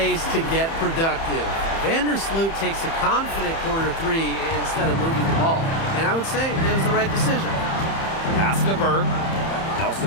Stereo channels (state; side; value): late; right; 30 ms